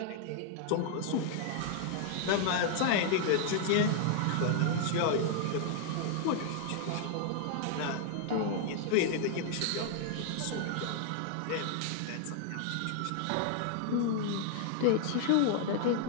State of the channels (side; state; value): both; different; correlation -0.01